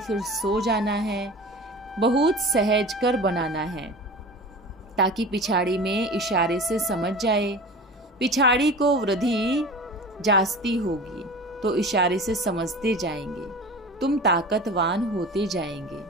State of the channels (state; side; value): normal; both; correlation 0.36